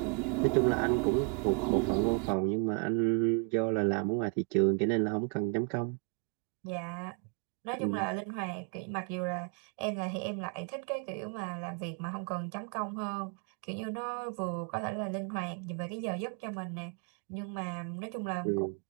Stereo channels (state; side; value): quieter; left; 37.0 dB